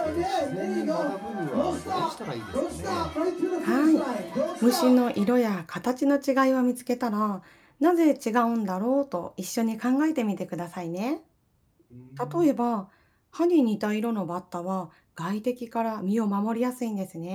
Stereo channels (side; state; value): both; identical; correlation 1.00